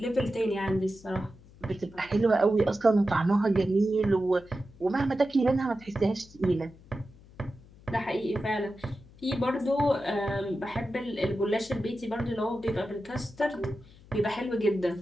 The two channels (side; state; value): left; noise; hum, 23 dB below the sound